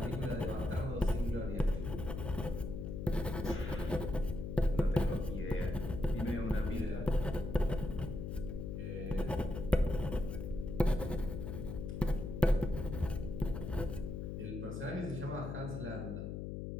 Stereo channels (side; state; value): left; noise; hum, 5 dB below the sound